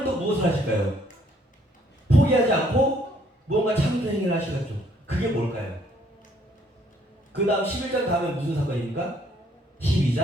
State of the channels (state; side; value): normal; both; correlation 0.66